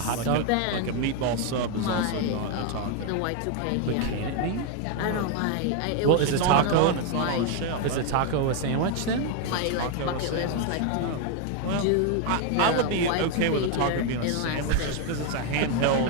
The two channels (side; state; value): both; different; correlation 0.01